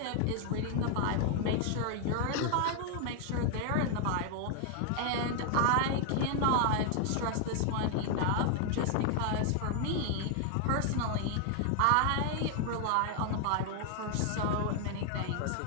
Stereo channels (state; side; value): different; both; correlation 0.00